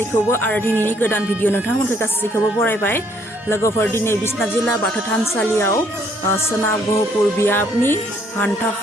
आरो दिनैनि गोदान भिडिअ नोंथांमोनखौ गासैखौबो बरायबाय लोगोफोर दिनै बिश्वनाथ जिल्ला बाथौ थानसालियाव सोनाब गहपुर बियाबनि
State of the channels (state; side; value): normal; both; correlation 0.66